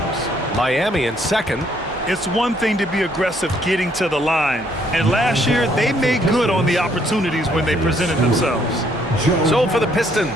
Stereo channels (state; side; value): normal; both; correlation 0.68